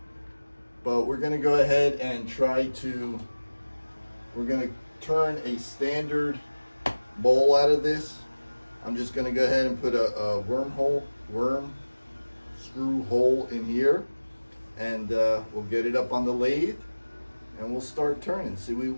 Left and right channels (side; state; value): both; inverted; correlation -1.00